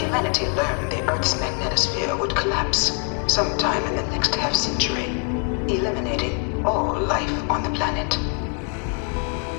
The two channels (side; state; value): right; quieter; 38.2 dB